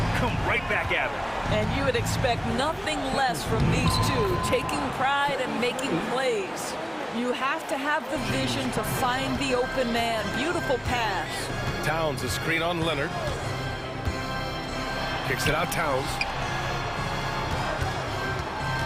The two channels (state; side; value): identical; both; correlation 1.00